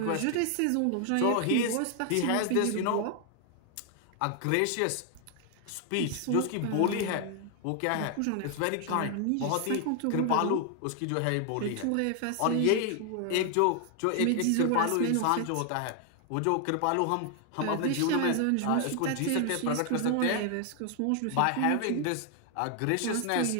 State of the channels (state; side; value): different; both; correlation 0.00